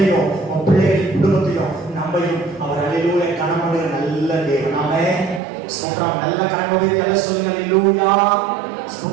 உன் பிள்ளைகளின் குடும்பத்தையும் நம்மையும் அவர் அல்லேலூயா கனமடு நல்ல தேவன். ஆமென். ஸ்தோத்திரம். நல்ல கரங்களை எல்லாம் சொல்லுங்க. அல்லேலூயா.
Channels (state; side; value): drops out; left; at 5.4 s